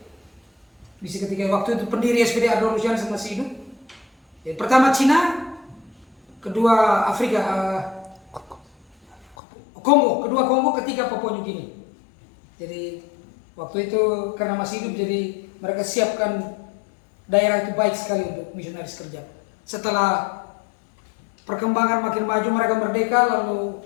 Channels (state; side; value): drops out; right; at 9.3 s